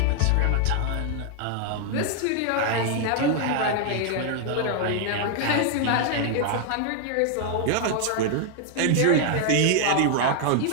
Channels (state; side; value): different; both; correlation 0.00